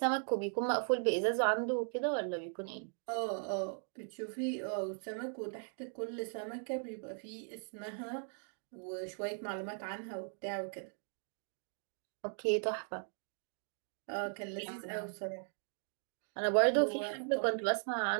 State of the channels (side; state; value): left; silent; 52 dB below the other